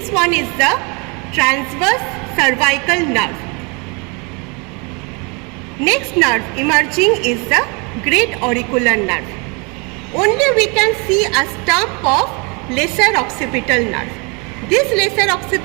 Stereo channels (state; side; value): quieter; left; 31.3 dB